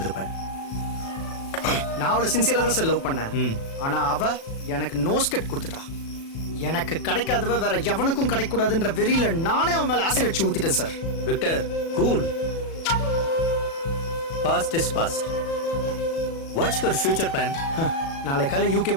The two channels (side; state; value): right; late; 36 ms